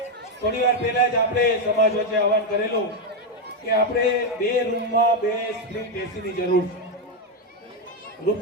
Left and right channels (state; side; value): normal; both; correlation 0.05